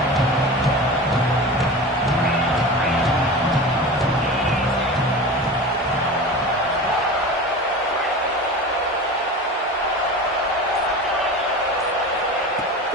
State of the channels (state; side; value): normal; both; correlation 0.31